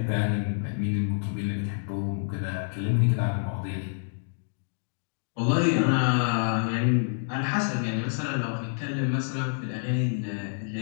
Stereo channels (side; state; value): right; silent; digital silence